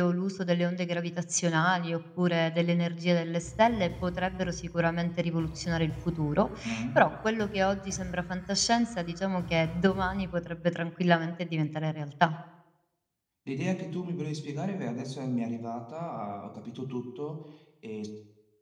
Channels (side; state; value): both; identical; correlation 1.00